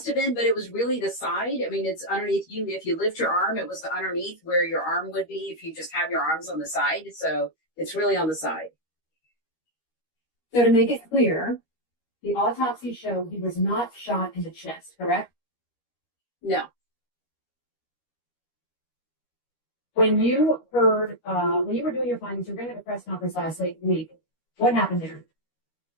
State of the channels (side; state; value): right; late; 13 ms